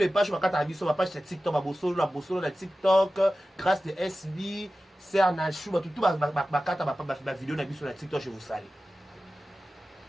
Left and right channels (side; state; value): both; normal; correlation 0.95